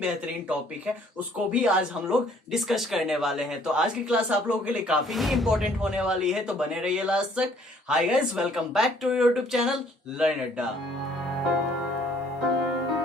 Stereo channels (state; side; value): normal; both; correlation 0.60